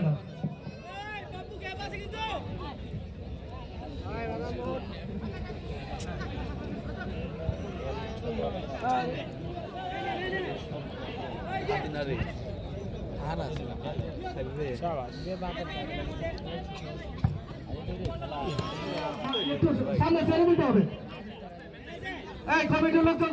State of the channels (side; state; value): both; identical; correlation 1.00